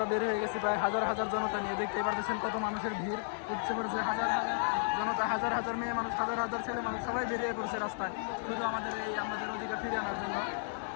বের হয়ে গেছি প্রায় হাজার হাজার জনতা নিয়ে। দেখতেই পাচ্ছেন কত মানুষের ভিড় উঠছে পড়েছে, হাজার হাজার জনতা, হাজার হাজার মেয়ে মানুষ, হাজার হাজার ছেলে মানুষ, সবাই বেরিয়ে পড়ছে রাস্তায় শুধু আমাদের অধিকার ফিরিয়ে আনার জন্য।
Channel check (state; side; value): silent; right; 55 dB below the other